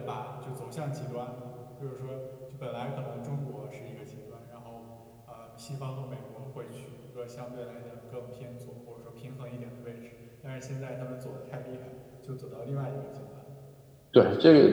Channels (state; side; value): identical; both; correlation 1.00